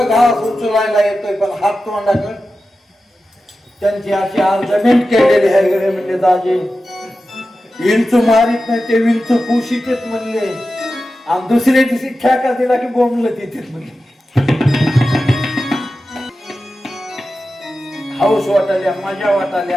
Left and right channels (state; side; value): normal; both; correlation 0.93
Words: उचलायला येतोय पण हात तोंडाकडे त्यांची अशी अर्जमेंट केलेली आहे गडे म्हणले. दाजे विंचू मारित नाही ते विंचू पुशीतेत म्हणले. आणि दुसऱ्या दिवशी ठेका दिला की बोंबलं तिथे म्हणले. हाऊस वाटाल्या, मजा वाटाल्या